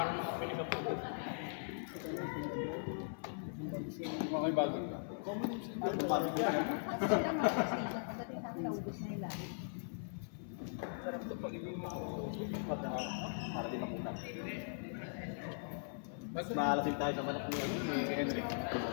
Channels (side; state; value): right; silent; 51 dB below the other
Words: Mga bago. Para din makuna. Mas maalasin tayo sa manok ni Henry.